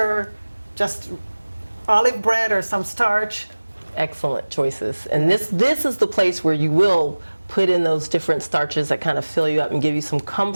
just olive bread or some starch. Excellent choices. And this is the place where you will put in those different starches that kind of fill you up and give you some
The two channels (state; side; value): inverted; both; correlation -1.00